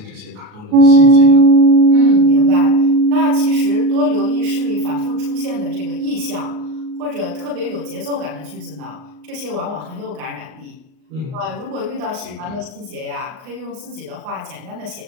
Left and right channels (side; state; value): left; late; 38 ms